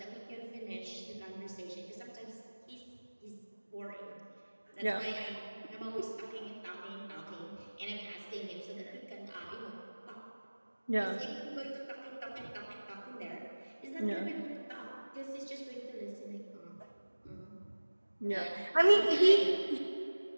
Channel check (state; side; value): inverted; both; correlation -1.00